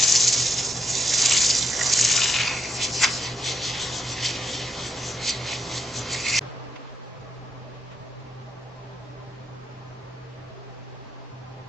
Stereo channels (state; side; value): normal; both; correlation 0.81